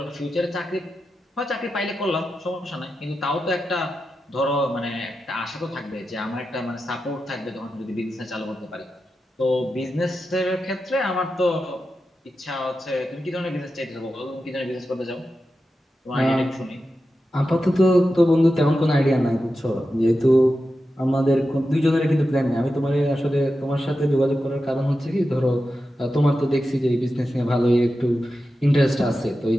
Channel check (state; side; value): normal; both; correlation 0.91